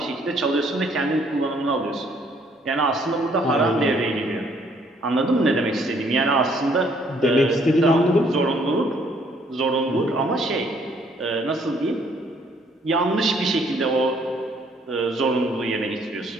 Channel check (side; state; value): both; normal; correlation 0.65